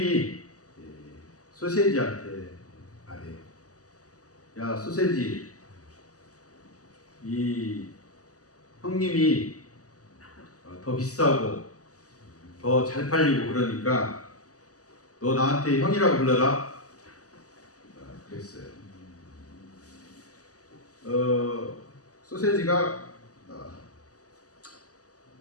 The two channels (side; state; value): right; late; 0.67 ms